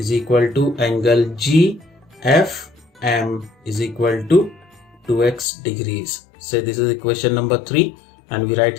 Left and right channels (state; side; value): drops out; right; at 5.5 s